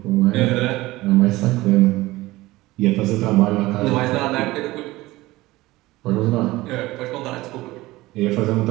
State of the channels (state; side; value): quieter; left; 18.8 dB